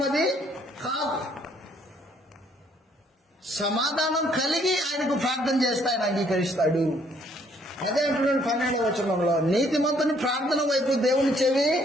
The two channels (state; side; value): normal; both; correlation 0.65